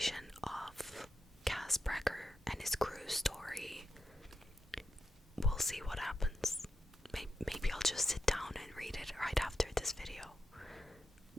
of Cass Brecker and his crew story, we'll see what happens. Maybe I'll just this video.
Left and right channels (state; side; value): normal; both; correlation 0.87